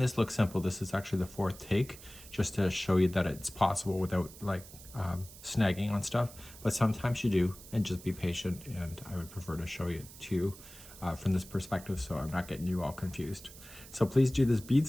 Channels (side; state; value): right; noise; hiss, 18 dB below the sound